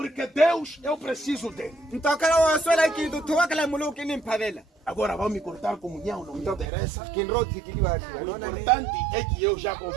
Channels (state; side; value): drops out; left; at 6.7 s